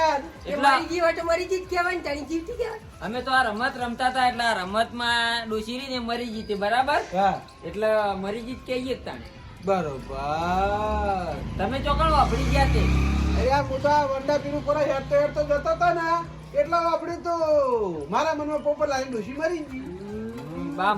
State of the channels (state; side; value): identical; both; correlation 1.00